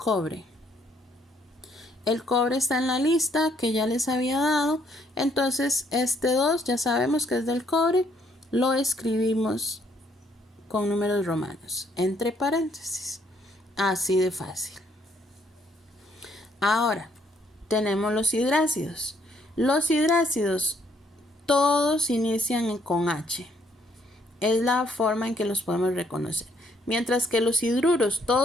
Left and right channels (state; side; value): normal; both; correlation 0.68